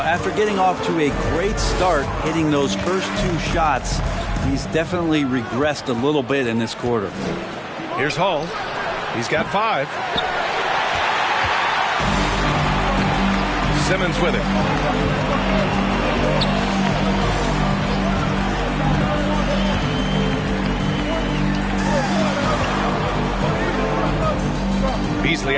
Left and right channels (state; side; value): identical; both; correlation 1.00